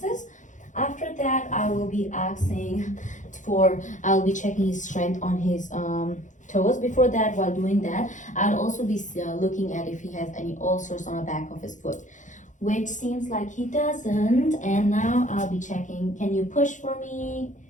After that, I'll be checking his strength on his toes. Before that, while doing that, I'll also be looking at if he has any ulcers on the back of his foot, which seems like he doesn't. And now I'll be checking. Can you push for me?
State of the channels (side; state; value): right; late; 0.36 ms